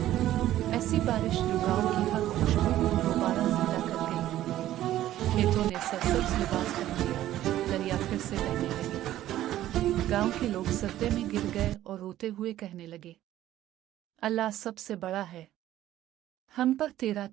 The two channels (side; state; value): left; quieter; 13.5 dB